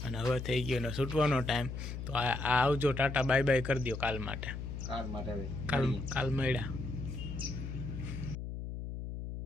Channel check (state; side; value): noise; left; hum, 6 dB below the sound